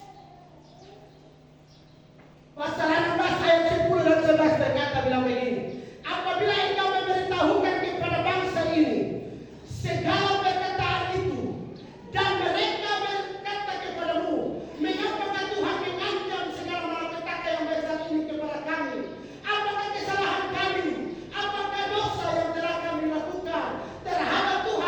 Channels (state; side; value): identical; both; correlation 1.00